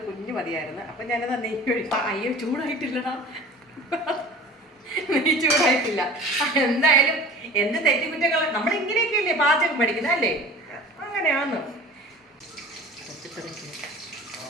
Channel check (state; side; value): normal; both; correlation 0.41